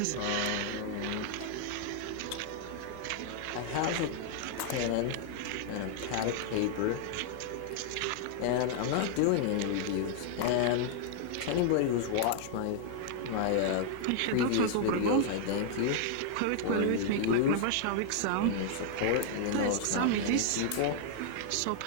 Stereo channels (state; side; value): different; both; correlation -0.01